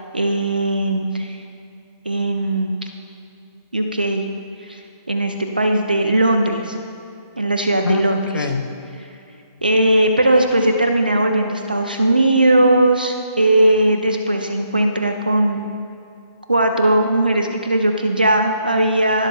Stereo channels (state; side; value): inverted; both; correlation -0.77